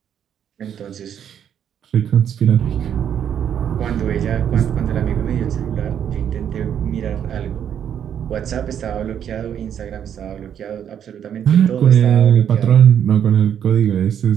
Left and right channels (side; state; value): left; quieter; 9.1 dB